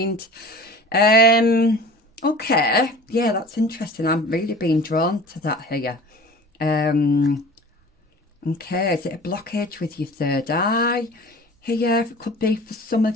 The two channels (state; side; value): normal; both; correlation 0.43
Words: Okay, yeah, that's interesting. I'm really being drawn to that here. Okay, is it a blockage with your third eye here? It could be for some